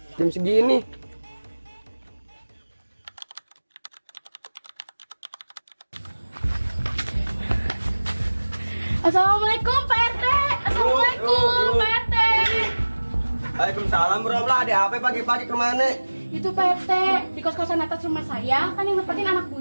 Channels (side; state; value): both; inverted; correlation -1.00